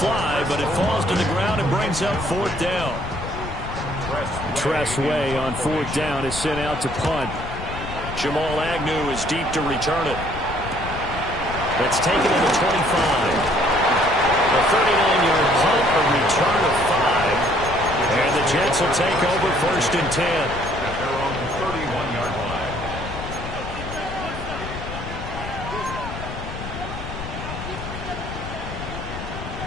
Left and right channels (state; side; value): noise; left; rumble, 9 dB below the sound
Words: fly, but it falls to the ground and brings up fourth down. Tress Way on fourth down is sent out to punt. Jamal Agnew is deep to return it. That's taken to the 25. A 39-yard punt, a return of 5. And the Jets will take over first and 10. At their own 31-yard line.